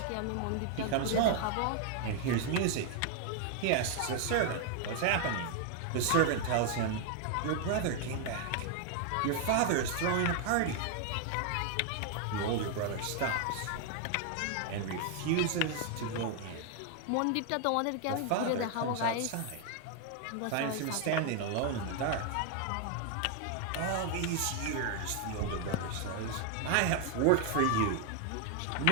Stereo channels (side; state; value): both; different; correlation 0.00